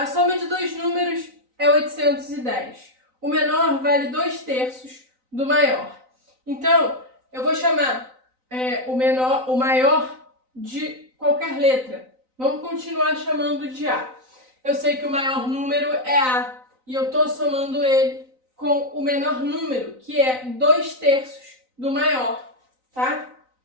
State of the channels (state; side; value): late; left; 3.9 ms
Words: soma de dois números é 810. O menor vale 2/3 do maior. Então, eu vou chamar o maior de qualquer letra. Vamos continuar chamando de A. Eu sei que o maior número é A e eu estou somando ele com o menor número, que é 2/3 do maior, tá?